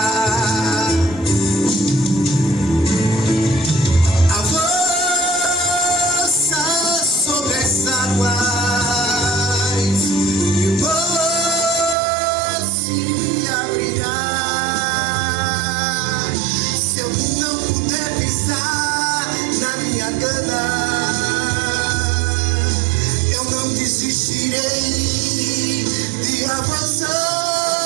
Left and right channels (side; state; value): left; drops out; at 12.0 s